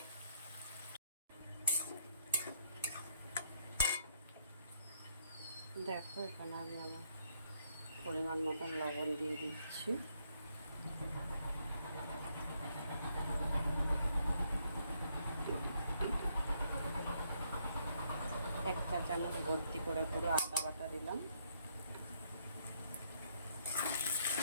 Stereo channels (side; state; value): both; inverted; correlation -0.72